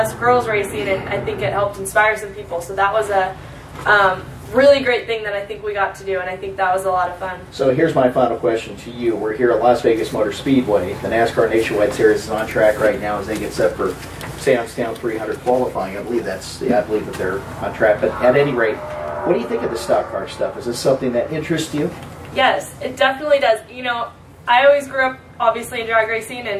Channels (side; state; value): both; identical; correlation 1.00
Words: girls racing, and I think it helped inspire some people. So that was a really great thing that I think we got to do, and I think that was a lot of fun. So here's my final question to you. We're here at Las Vegas Motor Speedway. The NASCAR Nationwide Series is on track right now as they get set for Sam's Town 300 qualifying. I believe that they're on track. But at any rate, what do you think of the stock car stuff? Is this something that interests you? Yes, it definitely does. I always grew up obviously in drag racing,